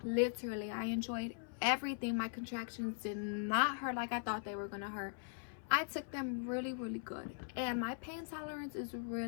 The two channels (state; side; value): silent; right; 51 dB below the other